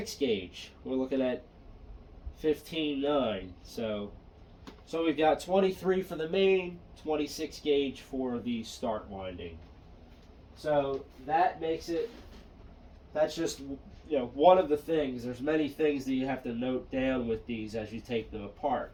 gauge. We're looking at 15.9. So we've got 23 for the main, 26 gauge for the start winding. So that makes it, that's just one of the things. There's many things that you have to note down with these as you take them apart,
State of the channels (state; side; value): identical; both; correlation 1.00